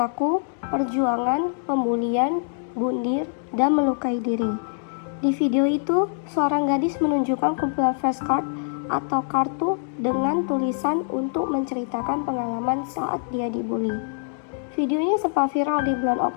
perjuangan, pembulian, bundir, dan melukai diri. Di video itu, seorang gadis menunjukkan kumpulan flashcard atau kartu dengan tulisan untuk menceritakan pengalaman saat dia dibully. Videonya sempat viral di bulan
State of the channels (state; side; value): silent; right; digital silence